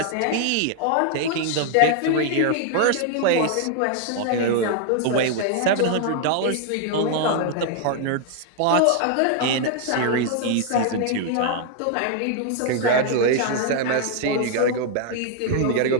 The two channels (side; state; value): both; different; correlation 0.00